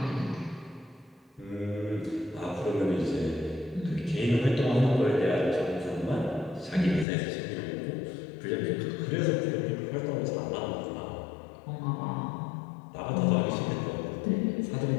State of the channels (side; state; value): right; drops out; at 7.1 s